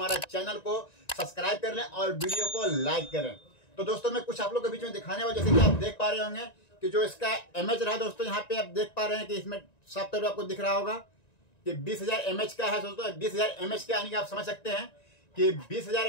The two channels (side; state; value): right; late; 1.9 ms